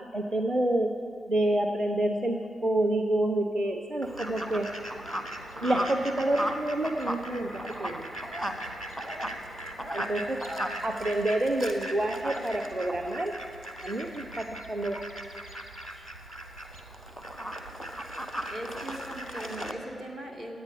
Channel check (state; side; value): normal; both; correlation 0.85